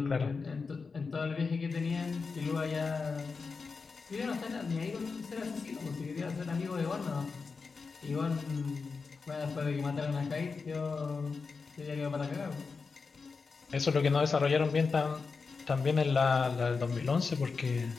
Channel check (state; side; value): quieter; right; 4.7 dB